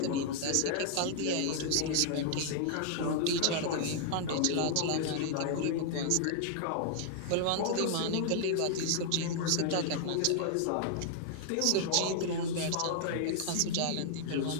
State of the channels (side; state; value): both; different; correlation -0.01